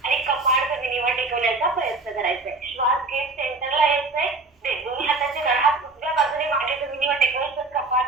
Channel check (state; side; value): quieter; left; 3.5 dB